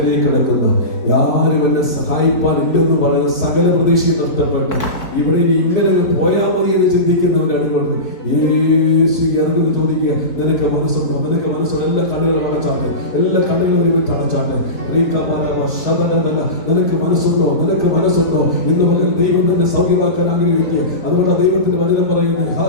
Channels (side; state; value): right; late; 4.0 ms